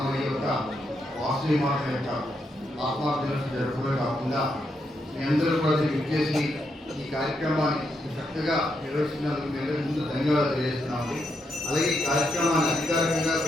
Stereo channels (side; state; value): both; normal; correlation 0.81